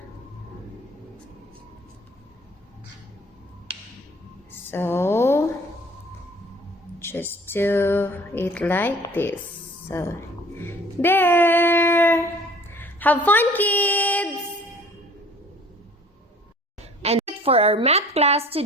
So just do it like this. So there. Have fun, kids. And for our math class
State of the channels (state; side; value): normal; both; correlation 0.51